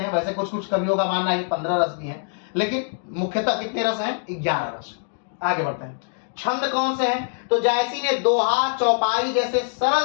हैं। वैसे कुछ कुछ कवियों का मानना है कि 15 रस भी हैं, लेकिन मुख्यतः कितने रस हैं? 11 रस। आगे बढ़ते हैं। छंद कौन से हैं? तो जायसी ने दोहा, चौपाई जैसे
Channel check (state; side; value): silent; right; digital silence